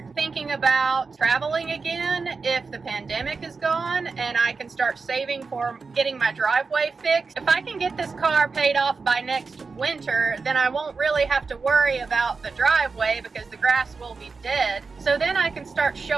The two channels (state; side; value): quieter; left; 4.6 dB